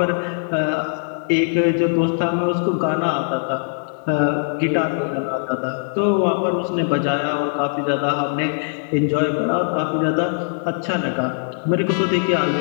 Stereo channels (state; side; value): silent; right; digital silence